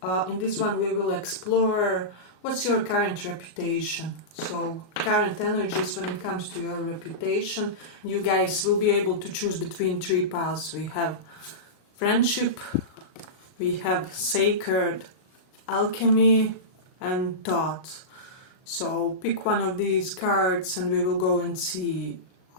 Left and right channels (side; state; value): right; late; 38 ms